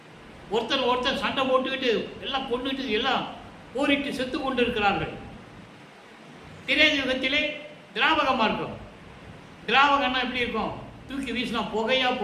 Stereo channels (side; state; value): both; identical; correlation 1.00